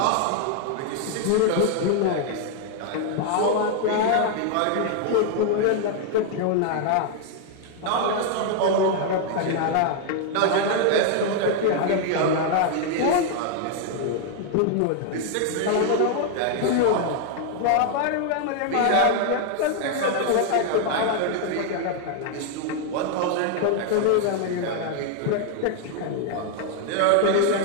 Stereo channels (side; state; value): both; different; correlation 0.00